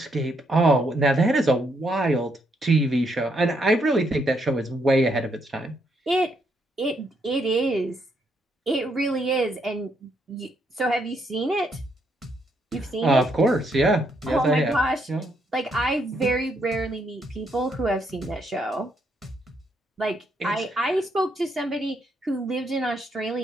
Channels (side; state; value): both; normal; correlation 0.75